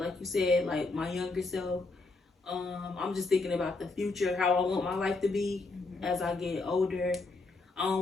you said, like my younger self. I'm just thinking about the future, how I want my life to be as I get older. I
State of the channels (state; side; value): quieter; right; 3.5 dB